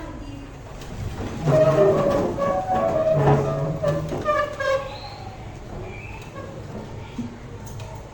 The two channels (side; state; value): both; identical; correlation 1.00